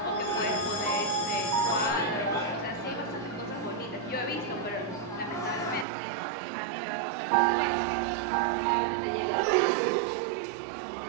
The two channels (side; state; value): left; drops out; at 5.9 s